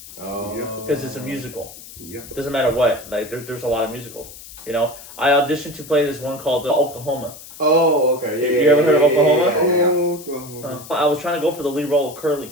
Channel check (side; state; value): left; noise; hiss, 16 dB below the sound